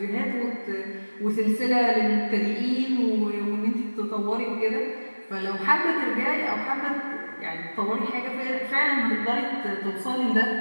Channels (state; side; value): inverted; both; correlation -1.00